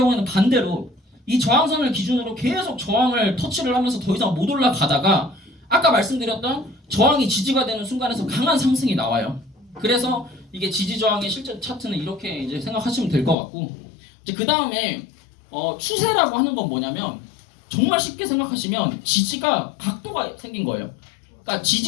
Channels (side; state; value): right; drops out; at 13.4 s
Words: 반대로 이 저항선을 기준으로 계속 저항을 터치를 하면서 더 이상 못 올라가다가 아까 말씀드렸던 저항이 지지가 되는 순간에서 강한 상승이 나와요. 그래서 이게 지지 저항의 실제 차트는 이렇게 이제 생각하시면 될 것 같고, 이제 그 다음에 추세라고 하는 건 뭐냐면 정말 쉽게 생각하시면 지지가 각도가 생긴 거예요. 그러니까